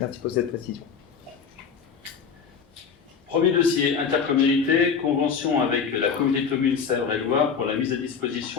pour cette précision. Premier dossier, intercommunalité, convention avec la communauté de communes Sèvres-et-Loire pour la mise à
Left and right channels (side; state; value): right; quieter; 6.3 dB